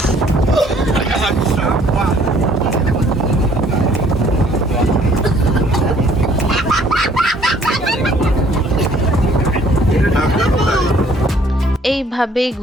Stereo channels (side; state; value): both; normal; correlation 0.59